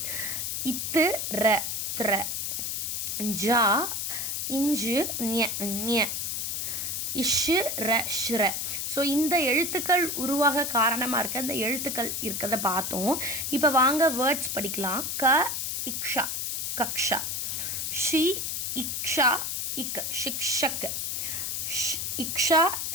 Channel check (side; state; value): left; noise; hiss, 2 dB below the sound